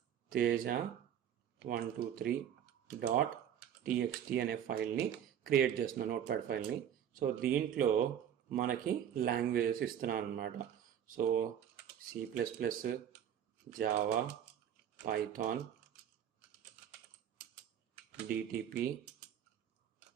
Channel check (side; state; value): left; quieter; 9.6 dB